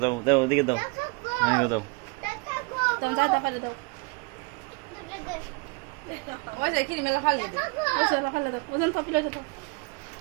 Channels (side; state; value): left; quieter; 29.8 dB